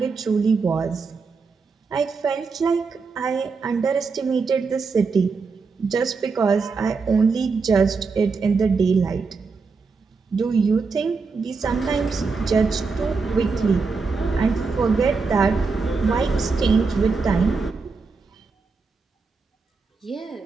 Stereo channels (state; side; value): quieter; left; 4.6 dB